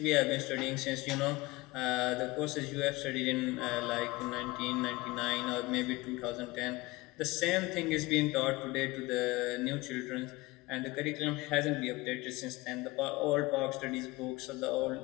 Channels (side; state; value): right; quieter; 21.5 dB